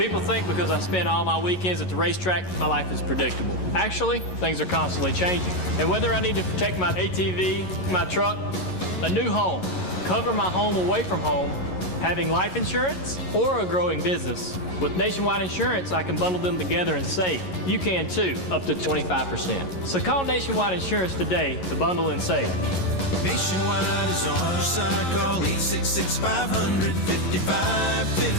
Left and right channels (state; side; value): late; right; 11 ms